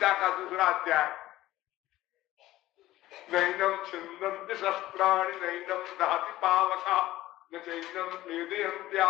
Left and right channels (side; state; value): right; quieter; 15.9 dB